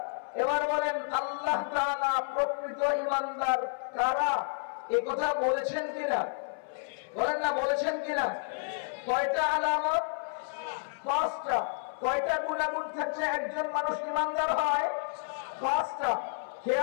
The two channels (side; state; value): right; silent; 57 dB below the other